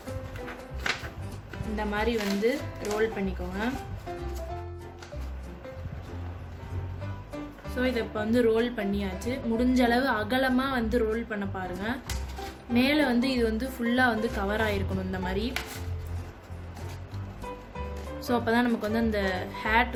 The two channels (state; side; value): identical; both; correlation 1.00